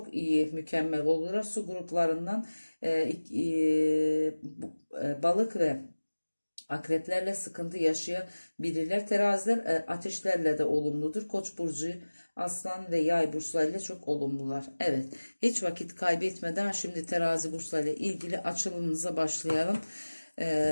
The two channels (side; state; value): both; inverted; correlation -1.00